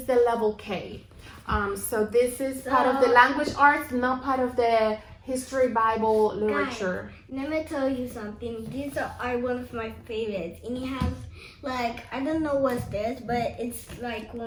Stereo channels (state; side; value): identical; both; correlation 1.00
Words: the level K. So this is part of the language arts, not part of the history Bible literature. Guys, let me tell you something. These are one of my favorites, and it has I don't know what's this, but it's like